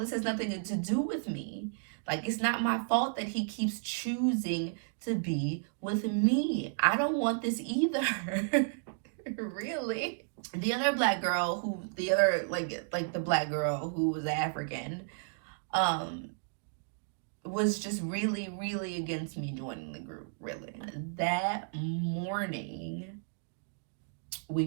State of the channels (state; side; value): silent; left; digital silence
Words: has nothing to do with me. Like, it's not my fault that he keeps choosing to be with me. I don't want this either. Really. The other black girl the black girl who was African, was just really, really against me joining the group, really. That morning, we